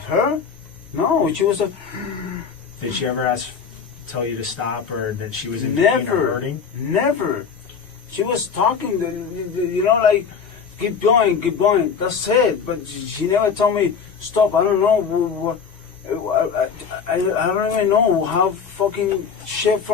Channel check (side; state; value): right; quieter; 6.2 dB